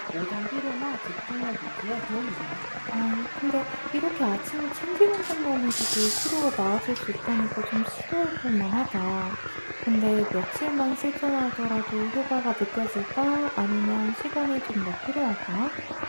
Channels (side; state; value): both; inverted; correlation -1.00